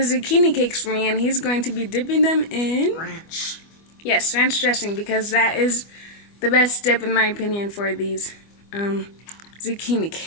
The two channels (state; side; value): late; right; 25 ms